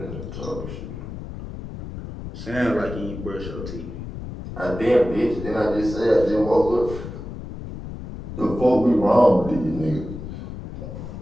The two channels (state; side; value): noise; left; rumble, 9 dB below the sound